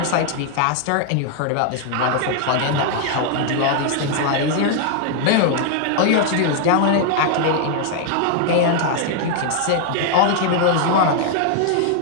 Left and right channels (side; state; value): both; different; correlation 0.00